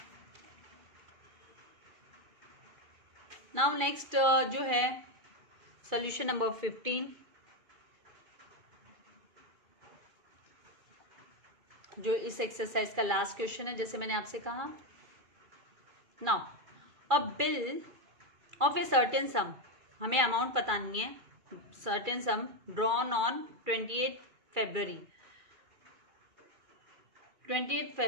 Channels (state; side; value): late; left; 2.3 ms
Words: नाउ नेक्स्ट जो है सोल्यूशन नंबर 15, जो इस एक्सरसाइज का लास्ट क्वेश्चन है, जैसे मैंने आपसे कहा। Now a bill of a certain सम, हमें अमाउंट पता नहीं है, सर्टेन सम ड्रॉन ऑन 28 फरवरी 28